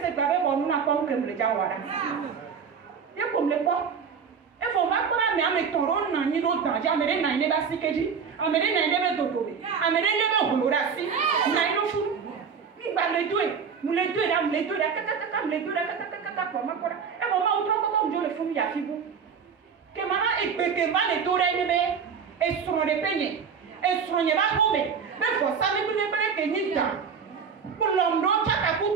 pas bon nous n'a pas que me le jawara. Et comme le quoi e faut pas qu'on a mis toron na ni do danger amere na ile ba sikeji amere na ile be dodobe amere ile be holorasi na ile fu ni ba le doe nous le doe là kaka le doe kaka comme quoi e faut pas autre comme je le fou ya fibu que mama e peke ma le tore ni be e sono de peñe e sono ba hobe be for sa me ni be ke ni ta pour l'homme chaka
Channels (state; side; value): quieter; left; 6.4 dB